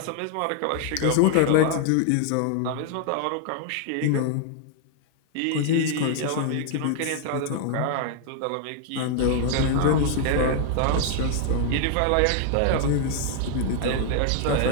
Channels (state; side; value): different; both; correlation 0.00